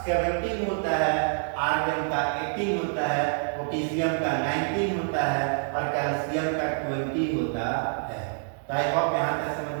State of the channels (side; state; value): left; silent; 59 dB below the other